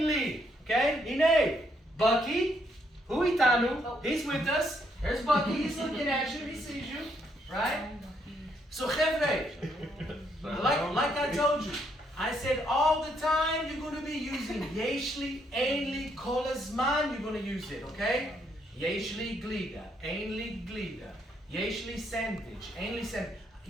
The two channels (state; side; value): normal; both; correlation 0.73